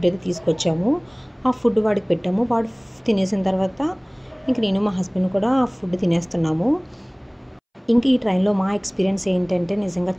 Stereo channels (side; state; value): both; identical; correlation 1.00